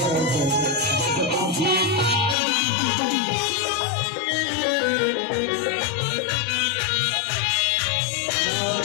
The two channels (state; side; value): drops out; right; at 2.4 s